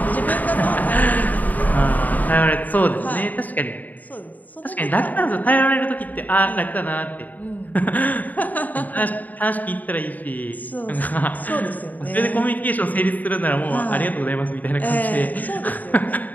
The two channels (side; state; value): right; late; 0.081 ms